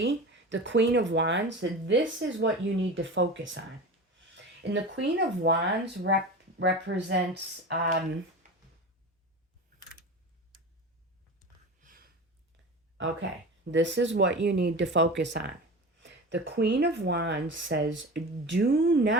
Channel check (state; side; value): normal; both; correlation 0.30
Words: the Queen of Wands. This is what you need to focus on. And the Queen of Wands represents... okay, this is what you need to focus on. The Queen of Wands says, do